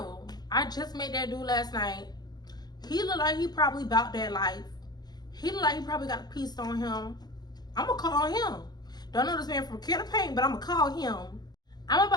I just met that dude last night. He look like he probably about that life. He look like he probably got a piece on him. I'm gonna call him. Don't know this man from Can of Paint, but I'm gonna call him. I'm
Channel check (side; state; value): right; late; 0.20 ms